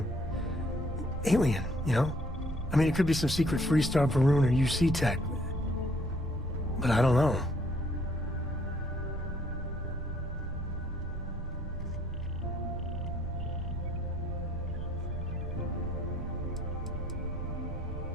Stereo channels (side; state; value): both; normal; correlation 0.64